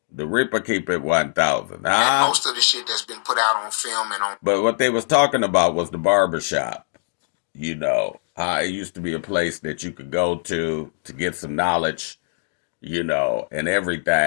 The Ripper keep it 1,000. And most of the shit that's been put out on film and on. But what they was talking about was the barbershop. You know, it used to be a place that you could go to get some knowledge, you know, and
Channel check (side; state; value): right; silent; digital silence